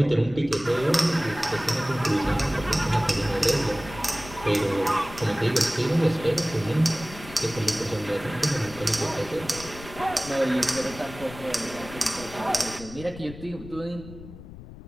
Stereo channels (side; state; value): left; noise; rumble, 15 dB below the sound